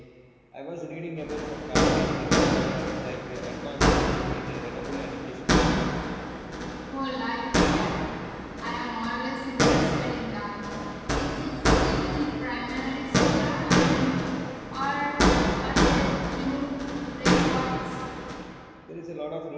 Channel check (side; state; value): both; identical; correlation 1.00